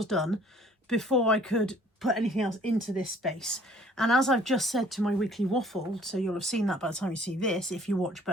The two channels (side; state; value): both; normal; correlation 0.56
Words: done before I could put anything else into this space. And as I've just said to my weekly waffle, so you'll have seen that by the time you see this, if you watch